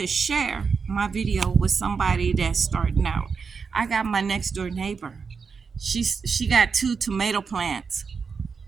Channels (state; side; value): quieter; left; 5.4 dB